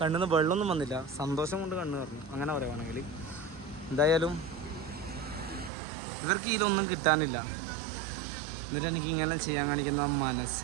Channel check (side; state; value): left; drops out; at 5.7 s